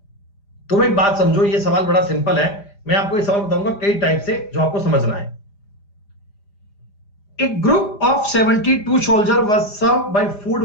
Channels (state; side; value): late; right; 4.9 ms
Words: तुम एक बात समझो, ये सवाल बड़ा सिंपल है, मैं आपको ये सवाल बताऊंगा कई टाइप से जो आपको समझना है। A group of 72 soldiers was served by